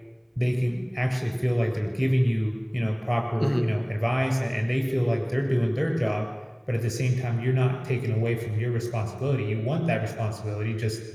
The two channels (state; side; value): identical; both; correlation 1.00